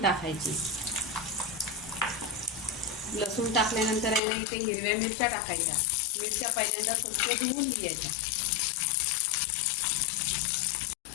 टाकायची. लसूण टाकल्यानंतर आहे ना इथे हिरव्या मिरच्या टाकायच्या. मिरच्या पहिल्यांदा स्वच्छ धुवून घ्यायच्या.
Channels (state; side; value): drops out; right; at 4.2 s